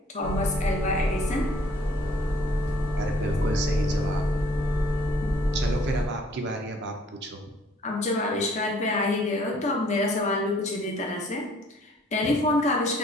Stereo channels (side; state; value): both; normal; correlation 0.59